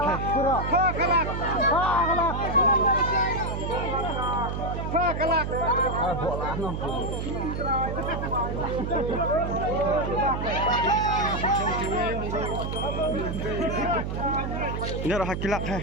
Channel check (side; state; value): right; noise; hum, 3 dB below the sound